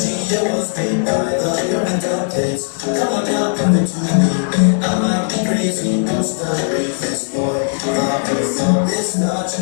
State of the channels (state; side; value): silent; right; digital silence